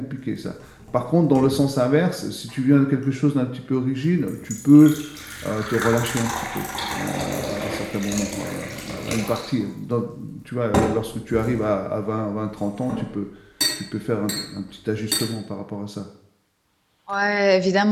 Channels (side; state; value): both; identical; correlation 1.00